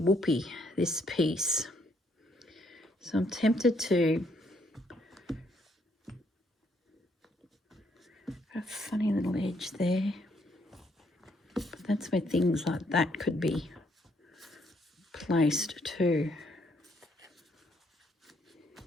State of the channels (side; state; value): both; normal; correlation 0.71